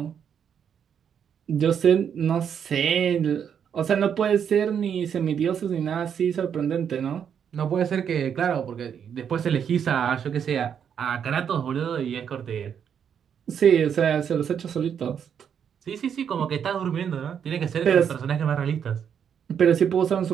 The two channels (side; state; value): left; quieter; 8.0 dB